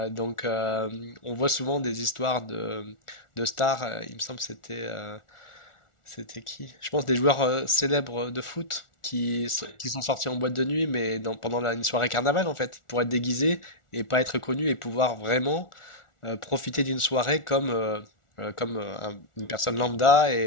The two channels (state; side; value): late; right; 1.4 ms